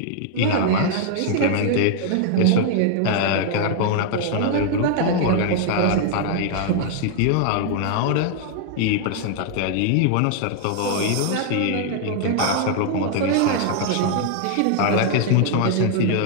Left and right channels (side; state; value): both; different; correlation 0.00